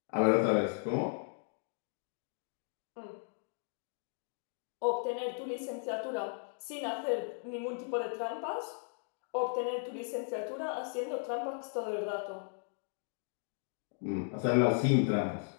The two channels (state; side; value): silent; right; 54 dB below the other